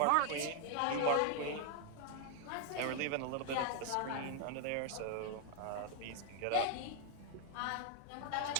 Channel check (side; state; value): both; different; correlation 0.00